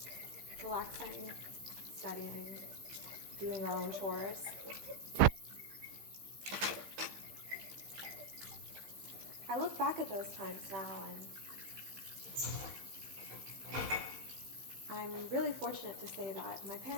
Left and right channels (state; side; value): late; left; 15 ms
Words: Relaxing, studying, doing our own chores. I look back at those times now and I'm really fortunate to say that my